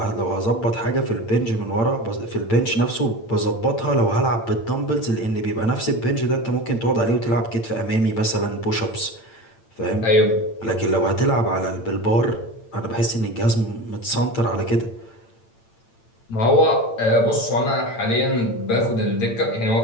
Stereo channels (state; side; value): late; right; 8.8 ms